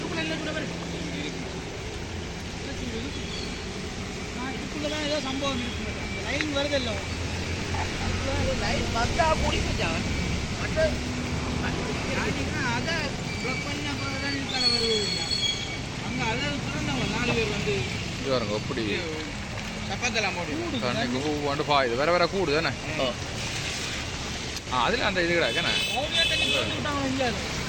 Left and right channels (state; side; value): identical; both; correlation 1.00